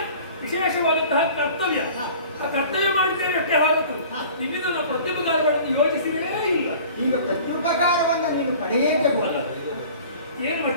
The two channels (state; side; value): inverted; both; correlation -0.45